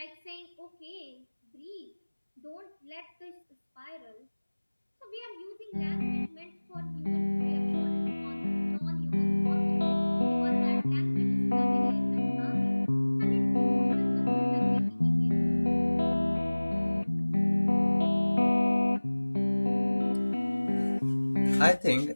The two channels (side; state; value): both; inverted; correlation -1.00